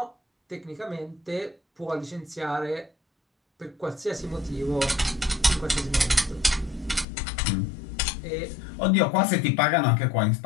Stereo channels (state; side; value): drops out; right; at 7.1 s